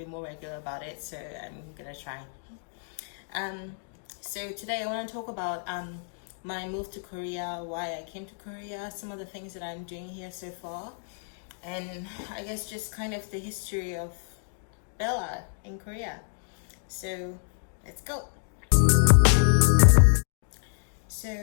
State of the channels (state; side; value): silent; right; digital silence